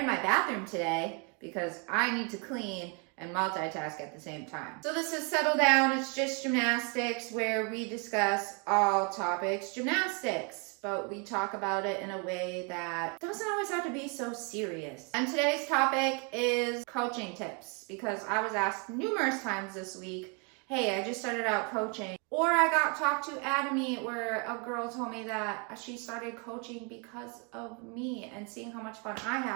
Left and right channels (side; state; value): left; quieter; 35.3 dB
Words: my bathroom today because I need to clean and multitask at the same time. So this is Settle Down. It's just gymnastics, where we discuss all topics gymnastics, but we talk about it in a way that doesn't always have to be so serious. And today's topic is coaching tips, because I was asked numerous times this week, hey, I just started out coaching. Or I got talked to at a meet where a girl told me that she started coaching because of me and seeing how much fun I